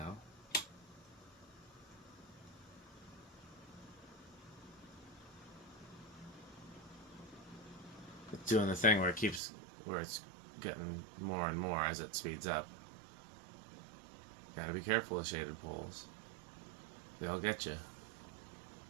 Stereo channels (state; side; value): drops out; left; at 9.4 s